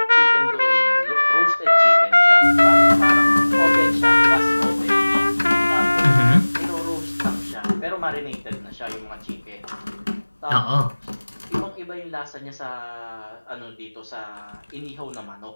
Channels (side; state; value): both; inverted; correlation -1.00